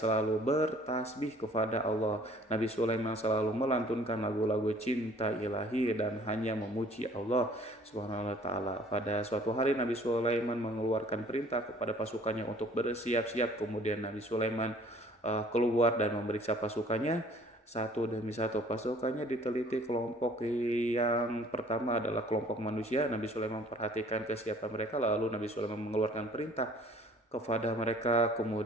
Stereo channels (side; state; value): both; normal; correlation 0.54